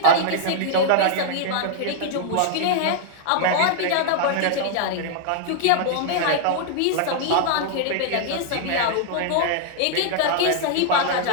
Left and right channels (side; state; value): both; different; correlation -0.01